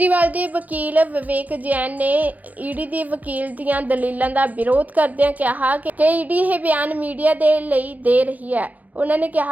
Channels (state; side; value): late; left; 0.078 ms